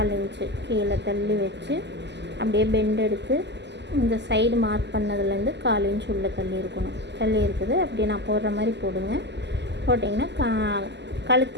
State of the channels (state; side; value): late; left; 0.50 ms